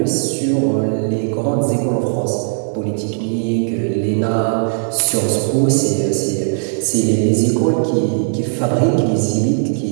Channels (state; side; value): silent; left; 59 dB below the other